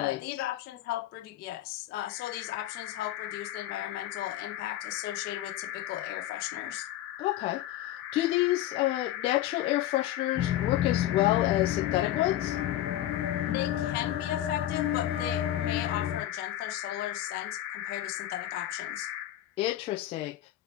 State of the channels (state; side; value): quieter; right; 13.4 dB